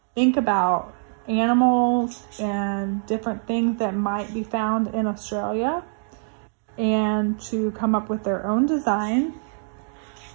think about animals and different things that might be found in Australia and to come up with their own design.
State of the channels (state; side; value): silent; left; 62 dB below the other